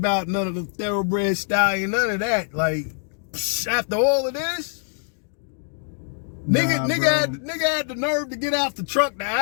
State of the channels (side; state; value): right; silent; 63 dB below the other